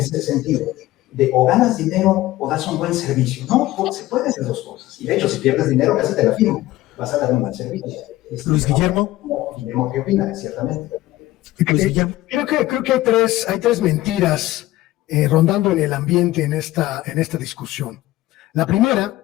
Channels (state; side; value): quieter; right; 16.5 dB